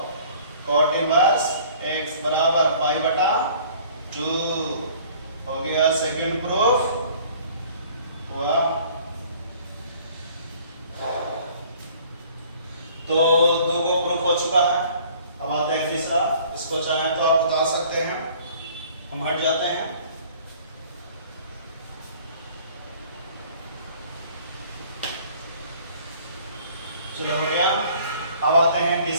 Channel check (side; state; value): both; inverted; correlation -0.53